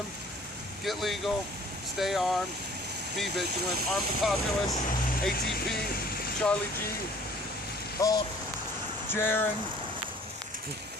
get legal, stay armed, be vigilant, arm the populace, ATP, Charlie G, Hulk, Jaron.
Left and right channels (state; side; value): normal; both; correlation 0.52